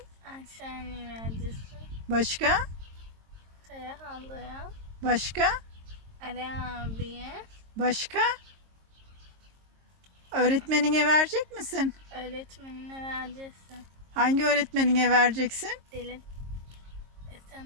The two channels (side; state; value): left; late; 22 ms